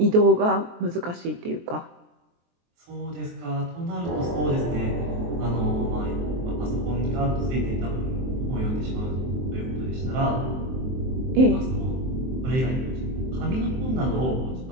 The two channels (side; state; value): left; late; 23 ms